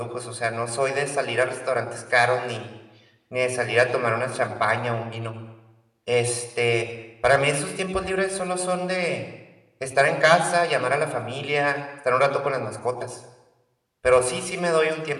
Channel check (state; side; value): identical; both; correlation 1.00